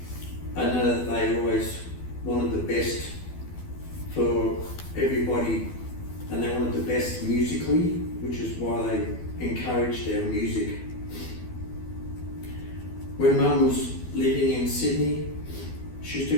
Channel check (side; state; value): right; late; 12 ms